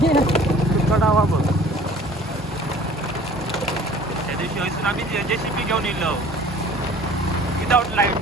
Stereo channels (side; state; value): both; normal; correlation 0.49